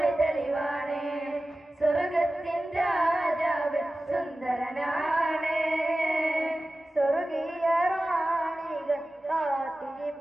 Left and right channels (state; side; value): normal; both; correlation 0.95